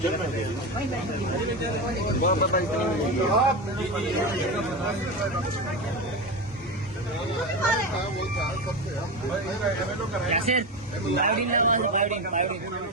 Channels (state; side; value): normal; both; correlation 0.19